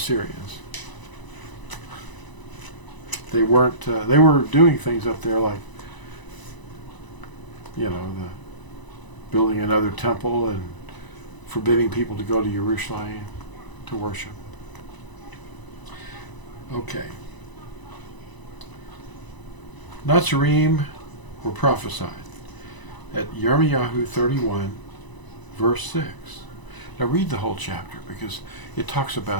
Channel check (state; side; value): late; right; 1.0 ms